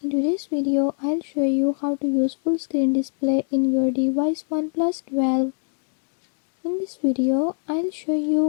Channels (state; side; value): silent; right; digital silence